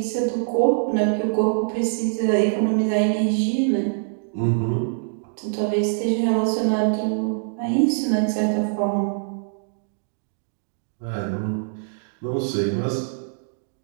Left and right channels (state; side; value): silent; left; digital silence